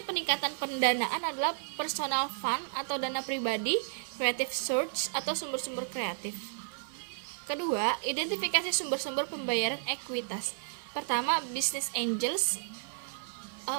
peningkatan pendanaan adalah personal fund atau dana pribadi, creative source atau sumber-sumber kreatif. Kedua, identifikasi sumber-sumber pembayaran ekuitas. Pertama, business angels.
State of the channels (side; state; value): left; silent; 56 dB below the other